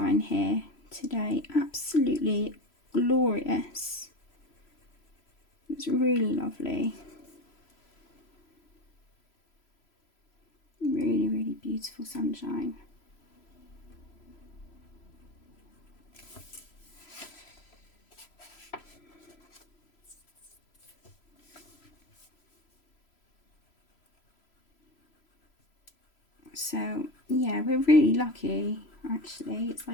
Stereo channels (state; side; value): late; right; 3.0 ms